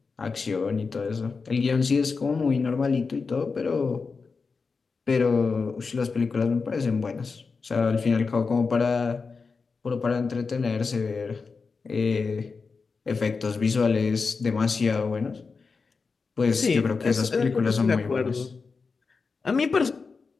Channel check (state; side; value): quieter; right; 4.7 dB